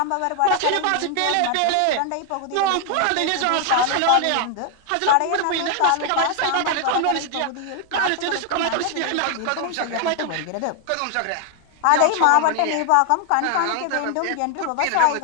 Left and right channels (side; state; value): both; different; correlation 0.00